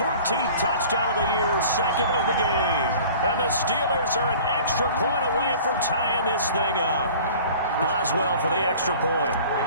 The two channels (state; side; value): inverted; both; correlation -0.45